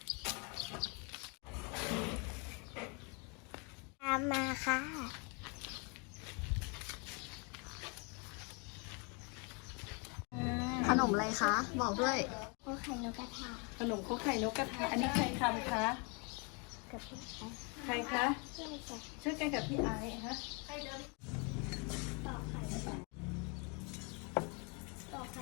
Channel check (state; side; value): quieter; right; 33.4 dB